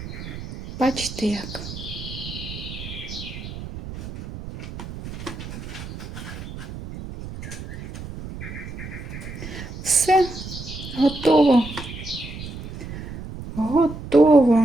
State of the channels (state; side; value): noise; right; rumble, 10 dB below the sound